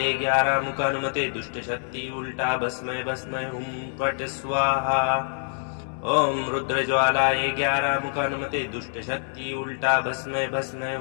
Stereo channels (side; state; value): right; silent; 61 dB below the other